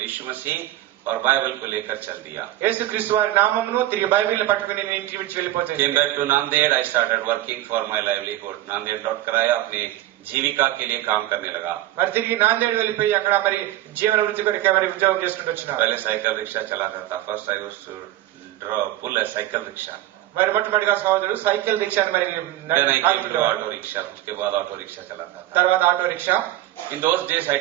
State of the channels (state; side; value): quieter; left; 14.8 dB